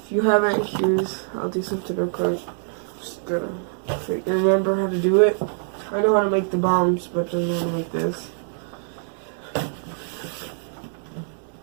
you haven't, I'll do something real quick. Just gonna remember how to do it. I know how to make the bombs, but I don't know how to make this.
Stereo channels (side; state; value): left; silent; digital silence